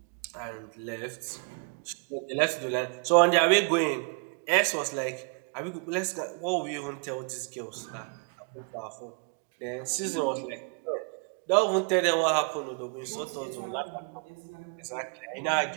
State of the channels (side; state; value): left; quieter; 37.3 dB